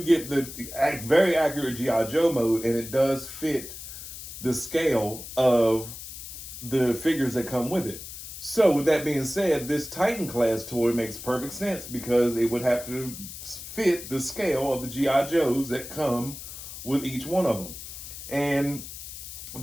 get the very accurate G.I. Joe mode, and it does fit the scale of the figures that come with it. So with that being said, this Titan class toy makes perfect sense because it would have to fit the scale of the G.I. Joes that come with each one of them. And I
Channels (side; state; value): left; noise; hiss, 11 dB below the sound